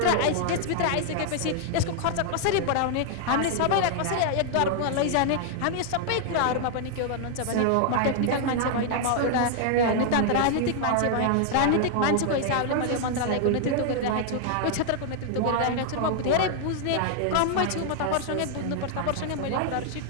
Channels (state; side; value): different; both; correlation 0.00